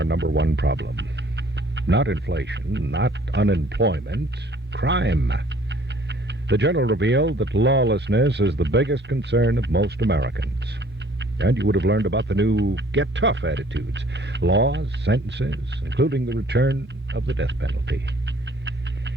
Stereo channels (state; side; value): normal; both; correlation 0.57